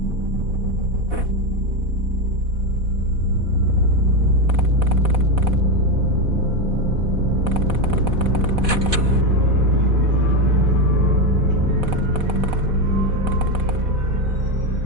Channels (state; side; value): late; left; 4.1 ms